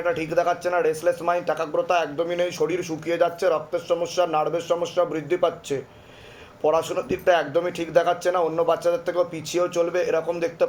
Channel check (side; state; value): both; identical; correlation 1.00